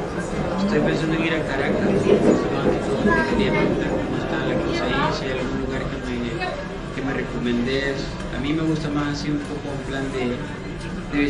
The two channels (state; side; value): identical; both; correlation 1.00